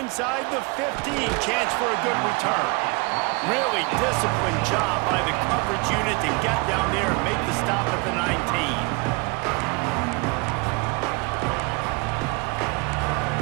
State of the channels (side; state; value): left; quieter; 29.2 dB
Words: the 15, chance for a good return. Really disciplined job by the coverage unit to get down there and make the stop at the 19.